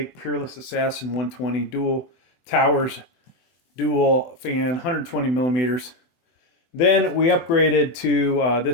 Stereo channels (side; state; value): right; late; 24 ms